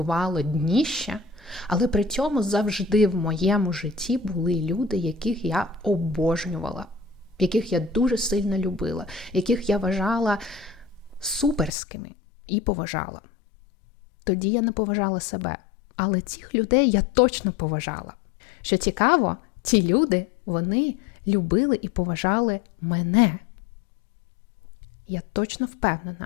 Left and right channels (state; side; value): drops out; right; at 11.7 s